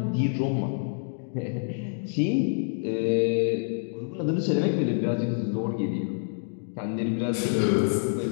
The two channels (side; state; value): right; silent; 60 dB below the other